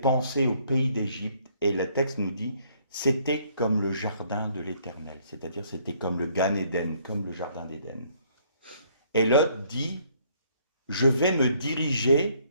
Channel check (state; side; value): inverted; both; correlation -0.64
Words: au pays d'Égypte et le texte nous dit c'était comme le jardin de l'Éternel, c'est-à-dire c'était comme le Gan Éden, comme le jardin d'Éden. Et Lot dit je vais me diriger